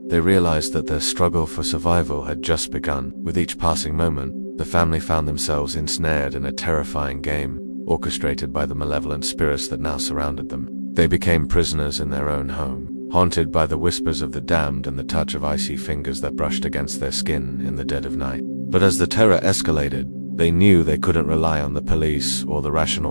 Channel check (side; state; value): both; inverted; correlation -1.00